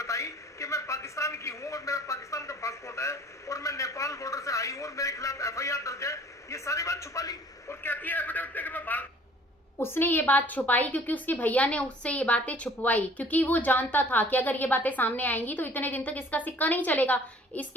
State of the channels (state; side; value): normal; both; correlation 0.53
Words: कि मैं पाकिस्तान की हूँ और मेरा पाकिस्तान का पासपोर्ट है और मैं नेपाल बॉर्डर से आई हूँ और मेरे खिलाफ एफआईआर दर्ज है, ये सारी बात छुपा ली और कहती है एफिडेविट में कि मैं भारत। उसने ये बात छुपाई क्योंकि उसके भैया ने उससे ये बातें छुपवाई, क्योंकि वो जानता था कि अगर ये बातें सामने आएंगी तो इतने दिन तक इसका सिक्का नहीं चलेगा।